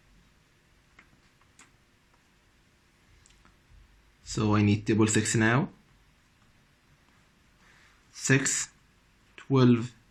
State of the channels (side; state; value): both; identical; correlation 1.00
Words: So I need table 6 now. 6, 12,